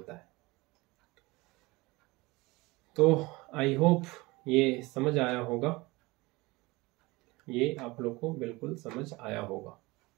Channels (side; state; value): left; quieter; 22.6 dB